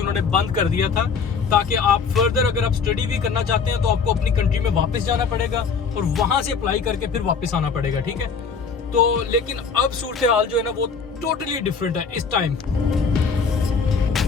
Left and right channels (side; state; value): right; quieter; 5.5 dB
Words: उन्होंने बंद कर दिया था, ताकि आप फर्दर अगर आप स्टडी भी करना चाहते हैं तो आपको अपनी कंट्री में वापस जाना पड़ेगा और वहाँ से अप्लाई करके फिर वापस आना पड़ेगा। ठीक है, तो लेकिन अब सूरत हाल जो है ना वो टोटली डिफरेंट है इस टाइम।